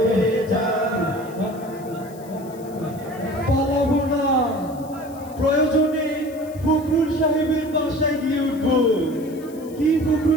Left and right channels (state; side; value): noise; left; hiss, 23 dB below the sound